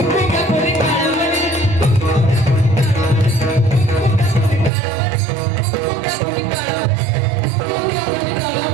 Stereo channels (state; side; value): drops out; left; at 4.7 s